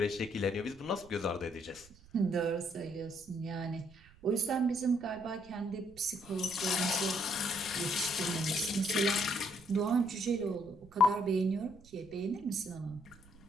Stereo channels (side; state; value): right; noise; rumble, 24 dB below the sound